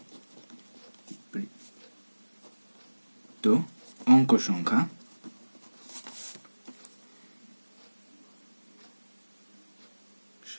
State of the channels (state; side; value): inverted; both; correlation -1.00